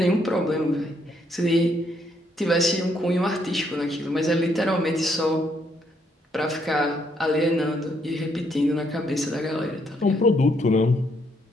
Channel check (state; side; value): normal; both; correlation 0.73